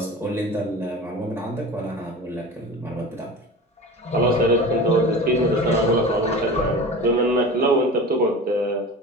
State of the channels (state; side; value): normal; both; correlation 0.34